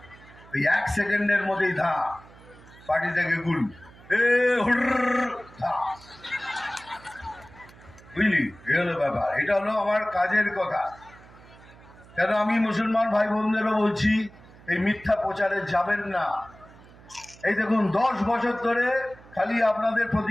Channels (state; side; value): noise; right; hum, 23 dB below the sound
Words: ওই 1 সেকেন্ডের মধ্যেই ধা পার্টি থেকে গুল, বুঝলি? এ হলো ব্যাপার। এটা হলো আমার কাজের কথা। কেন আমি মুসলমান ভাই বোনদেরও বলছি, এই মিথ্যা প্রচারে যাবেন না। এই দেখুন 10 বছর ধরে খালি আপনাদের